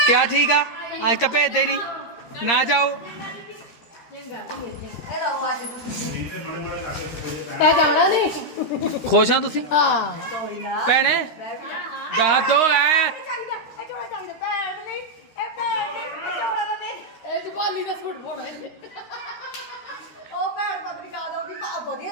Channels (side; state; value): right; late; 13 ms